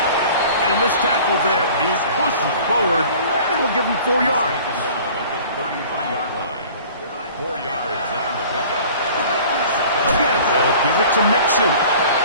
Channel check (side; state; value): both; inverted; correlation -0.46